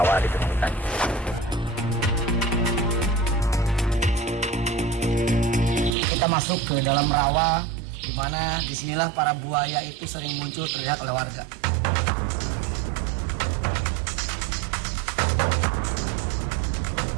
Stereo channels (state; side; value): drops out; left; at 6.0 s